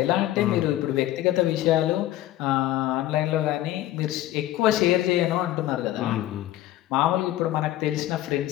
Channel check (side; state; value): right; quieter; 14.6 dB